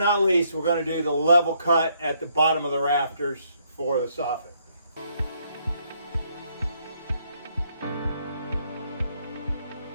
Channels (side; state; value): both; inverted; correlation -0.71